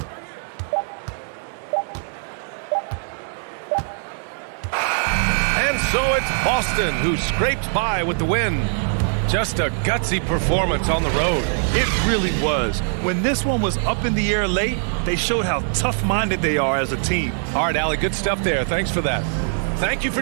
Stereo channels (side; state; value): left; silent; 64 dB below the other